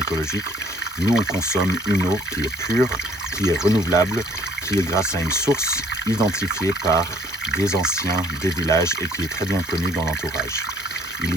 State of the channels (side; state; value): both; normal; correlation 0.59